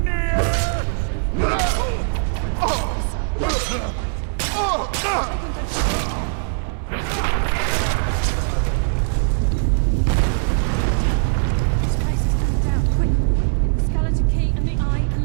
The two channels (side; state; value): left; silent; 65 dB below the other